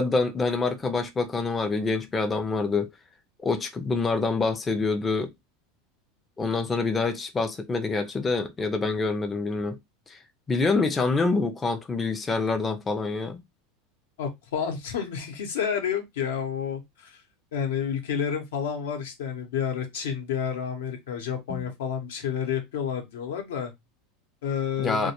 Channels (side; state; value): right; quieter; 4.3 dB